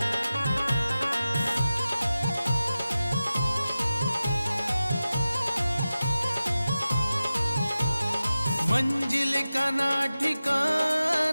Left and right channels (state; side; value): inverted; both; correlation -0.94